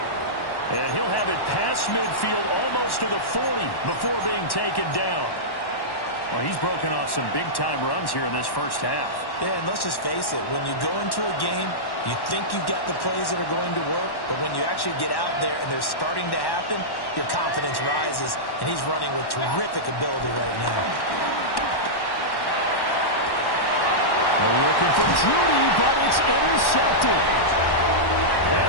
And he'll have it past midfield almost to the 40 before being taken down. Well, he's broken off some big-time runs here in this first half. Yeah, and let's just face it. When you go into a game, you think you've got the plays that are going to work, but when you actually get out there and they're starting to happen, your confidence rises, and he's running with terrific ability right now. They're looking for Judy, but it's intercepted. And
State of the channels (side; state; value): right; late; 1.1 ms